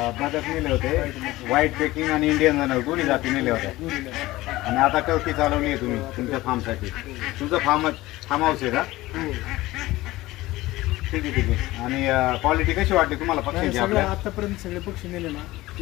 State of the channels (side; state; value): right; quieter; 18.2 dB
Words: बदक नेले होते, व्हाईट पेकिंग आणि इंडियन जनरल दोन्ही जाती नेल्या होत्या. आणि आता टर्की चालवली आहे तुम्ही तुमच्या फार्मसाठी. तुमचं फार्म हाऊस आहे का? ठीक आहे ठीक आहे. आणि क्वालिटी कशी वाटते तुम्हाला पक्षीची? आपल्या आतापर्यंत सगळे पक्षी नेले ना,